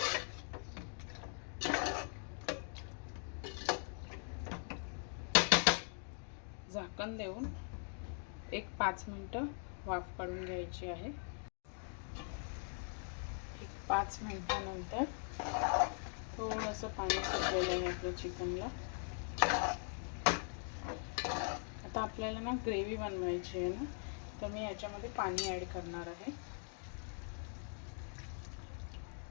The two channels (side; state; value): right; silent; 50 dB below the other